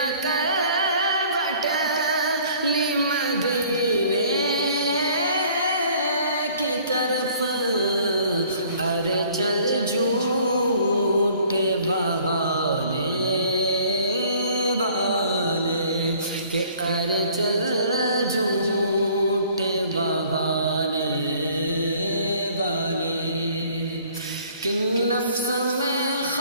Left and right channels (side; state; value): both; inverted; correlation -0.55